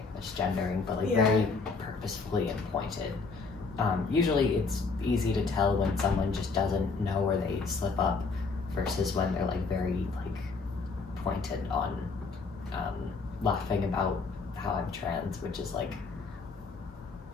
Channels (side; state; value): right; quieter; 4.4 dB